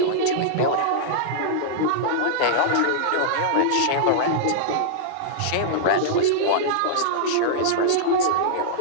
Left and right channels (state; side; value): different; both; correlation -0.02